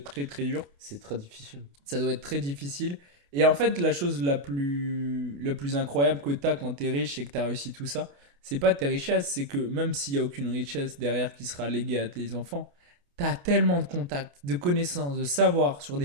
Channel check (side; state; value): left; late; 28 ms